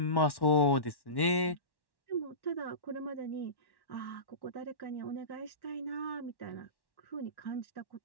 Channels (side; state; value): right; late; 1.1 ms